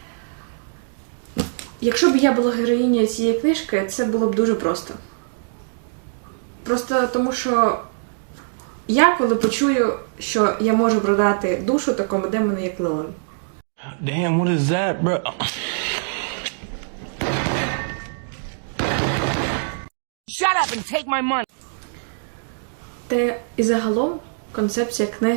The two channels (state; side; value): silent; left; digital silence